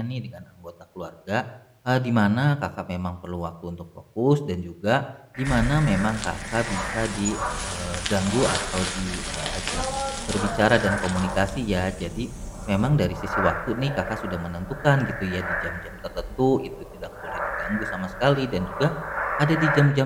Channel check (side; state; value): both; identical; correlation 1.00